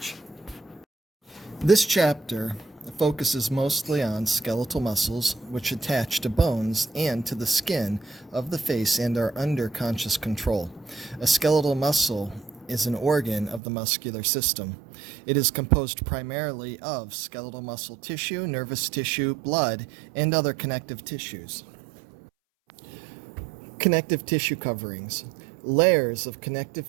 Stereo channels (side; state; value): left; drops out; at 13.6 s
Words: This chapter focuses mostly on skeletal muscles which attach to bones and to the skin of the face and are under conscious control. A skeletal muscle is an organ of the muscular system. It is composed primarily of skeletal muscle tissue, nervous tissue, blood, and other connective tissues. Connective tissue coverings. Layers of